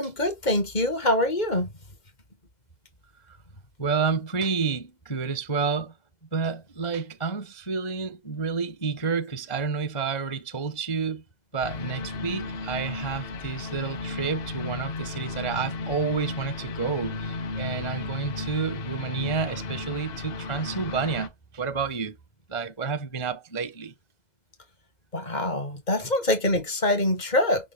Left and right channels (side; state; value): right; late; 2.1 ms